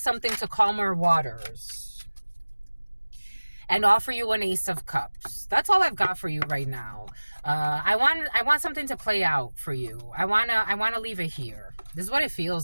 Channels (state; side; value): inverted; both; correlation -1.00